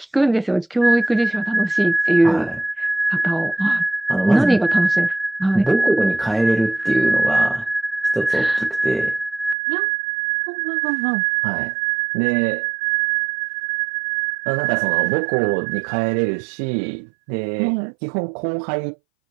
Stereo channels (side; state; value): left; drops out; at 9.6 s